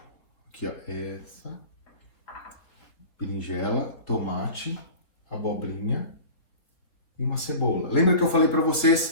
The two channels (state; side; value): late; right; 3.6 ms